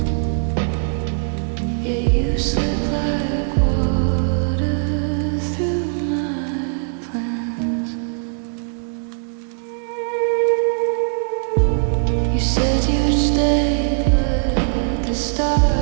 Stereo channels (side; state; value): left; silent; 65 dB below the other